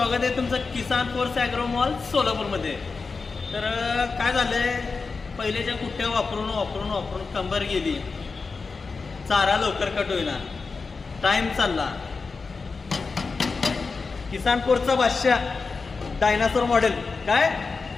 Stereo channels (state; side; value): quieter; right; 4.5 dB